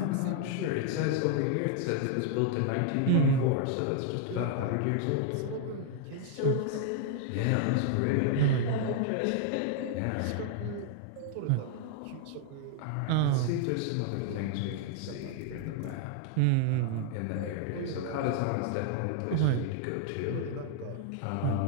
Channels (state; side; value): different; both; correlation 0.00